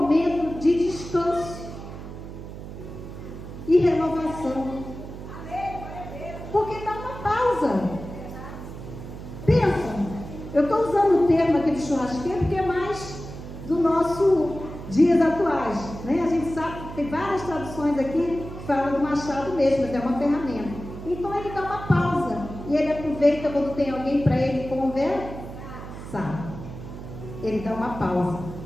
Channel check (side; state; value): right; noise; hum, 11 dB below the sound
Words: de descanso e renovação. Porque dá uma pausa. Pensa, eu estou usando o termo aqui de churrasqueiro porque é mais do nosso dias atuais, né? A gente sabe que tem várias traduções aqui que falam do machado mesmo, mas é uma ferramenta. Então ele dá uma pausa e ele aproveita quando tem alguém para ele conversar. Ele dá uma pausa.